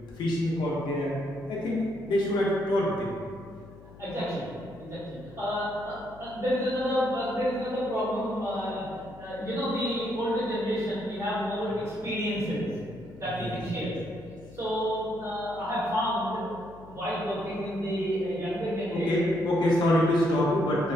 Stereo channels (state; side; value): noise; left; hum, 19 dB below the sound